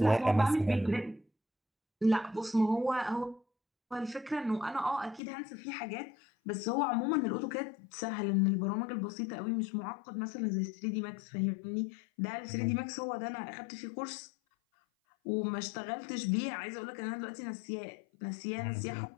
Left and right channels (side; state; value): right; drops out; at 5.2 s